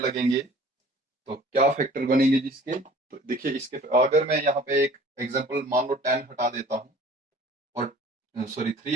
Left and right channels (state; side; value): normal; both; correlation 0.49